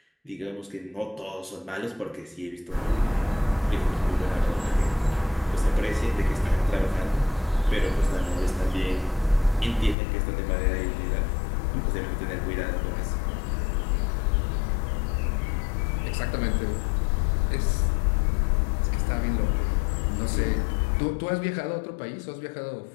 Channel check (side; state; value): right; drops out; at 10.0 s